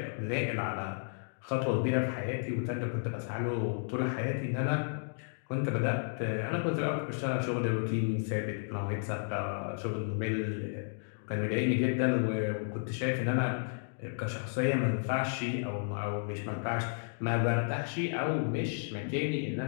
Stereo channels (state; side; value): silent; right; digital silence